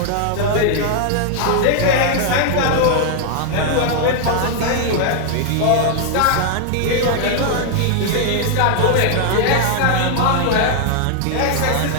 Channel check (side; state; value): both; different; correlation 0.00